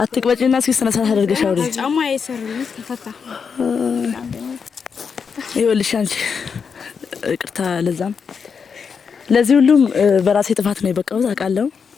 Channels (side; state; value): right; quieter; 6.1 dB